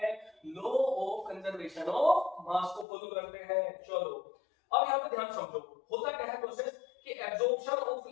law of conservation of mass को फॉलो करते हैं। चलो अब यहाँ पे ध्यान समझो, होता क्या है प्रोसेस कि absorption of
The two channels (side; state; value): right; drops out; at 2.9 s